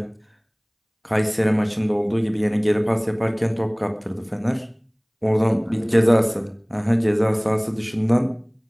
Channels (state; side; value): identical; both; correlation 1.00